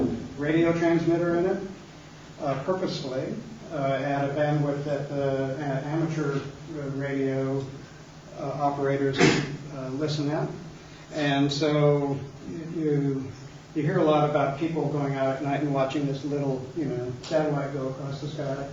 radio transmitter in it purposefully at a bandwidth that the amateur radio operators listen at. And so you hear a lot about people going out at night and watching this little satellite go across the sky.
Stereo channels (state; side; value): identical; both; correlation 1.00